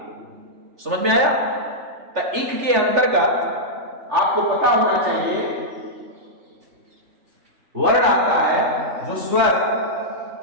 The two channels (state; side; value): late; left; 3.4 ms